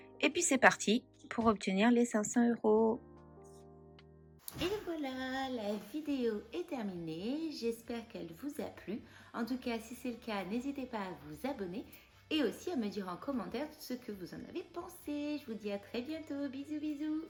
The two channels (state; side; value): identical; both; correlation 1.00